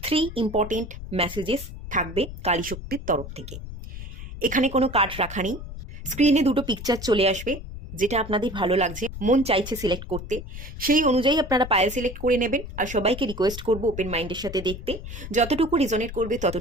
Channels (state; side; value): noise; left; rumble, 10 dB below the sound